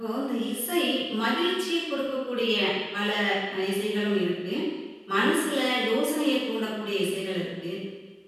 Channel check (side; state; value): both; identical; correlation 1.00